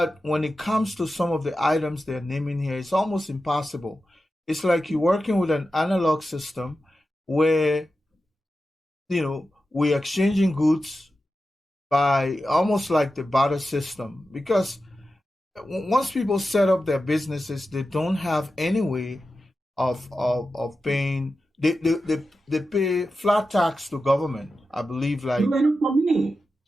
when it comes to some of the items they're naming here, it's almost impossible. It's like you're working with an analog system where we're exchanging goods by almost like the barter system, because once people set up their businesses, they don't have any way of paying. They pay flat tax to government. I believe, like for me,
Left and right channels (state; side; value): normal; both; correlation 0.92